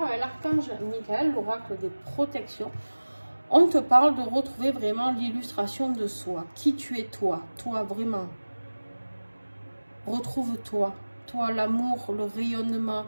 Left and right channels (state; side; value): inverted; both; correlation -1.00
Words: Avec l'archange Michael, l'oracle des protections, on te parle de retrouver vraiment l'illustration de soi. Qui tu es toi? Toi, vraiment. Retrouve-toi. Toi, l'amour, le rayonnement,